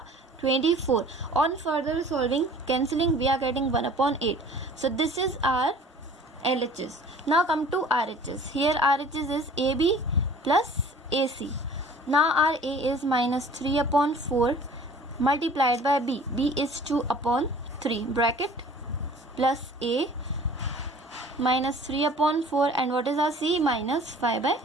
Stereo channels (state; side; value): normal; both; correlation 0.48